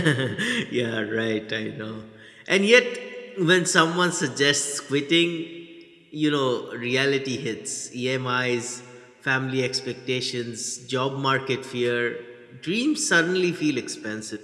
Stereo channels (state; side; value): identical; both; correlation 1.00